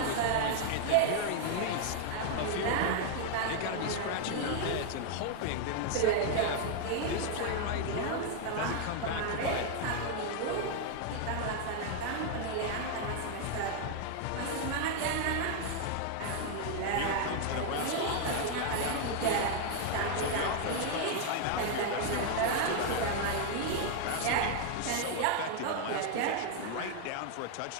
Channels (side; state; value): both; different; correlation 0.00